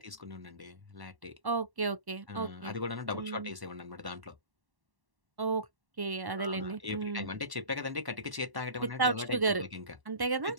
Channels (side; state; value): left; late; 1.1 ms